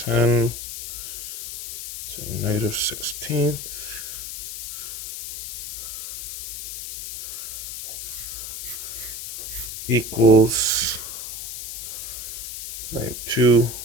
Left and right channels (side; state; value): left; noise; hiss, 7 dB below the sound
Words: to the negative 16th equals negative